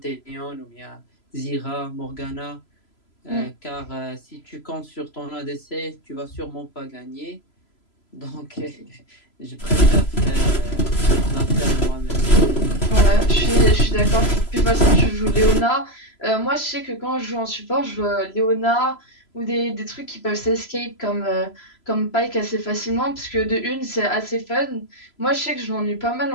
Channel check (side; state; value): right; late; 3.0 ms